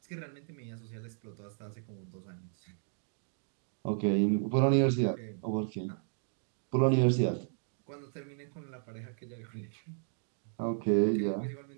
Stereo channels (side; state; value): left; silent; digital silence